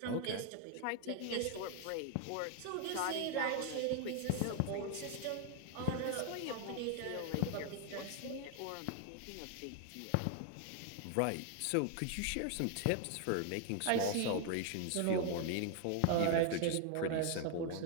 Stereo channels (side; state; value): both; different; correlation 0.01